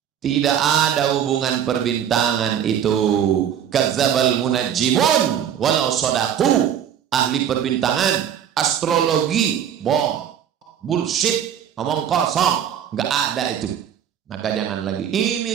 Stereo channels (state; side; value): quieter; left; 9.3 dB